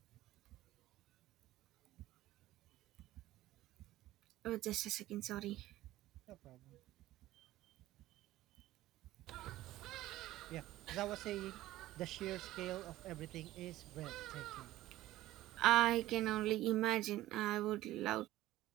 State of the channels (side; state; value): left; quieter; 15.7 dB